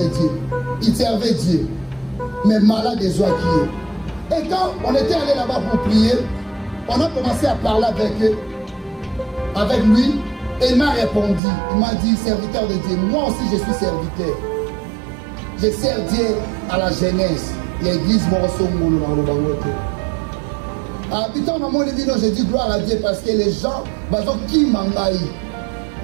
Dieu. Il servait Dieu. Mais malade des oies qui est. Et quand on était allé là-bas pour prier, on a commencé à parler avec lui. Et il m'a répondu. Il m'a dit, serviteur de Dieu. Moi aussi, je suis serviteur. Je sers Dieu à la jeunesse. L'église Morosomolo dans le Bangote. Habitant dans mon évident, je dis gloire à Dieu parce que les gens, qui m'engaillent.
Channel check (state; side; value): drops out; left; at 11.4 s